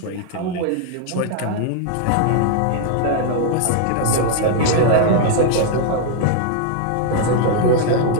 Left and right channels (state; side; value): different; both; correlation 0.00